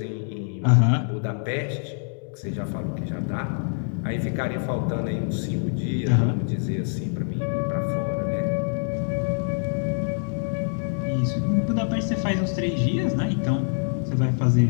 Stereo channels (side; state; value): right; silent; digital silence